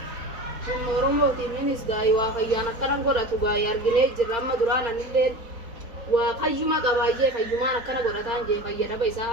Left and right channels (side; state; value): left; late; 4.4 ms